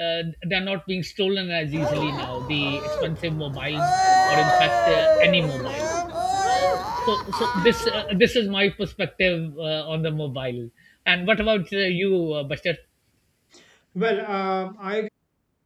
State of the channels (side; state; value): both; identical; correlation 1.00